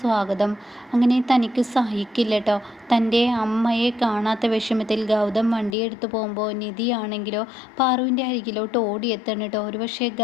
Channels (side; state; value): right; drops out; at 5.8 s